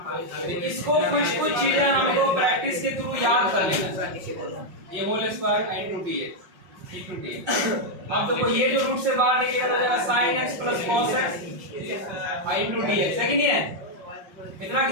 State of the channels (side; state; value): left; late; 5.5 ms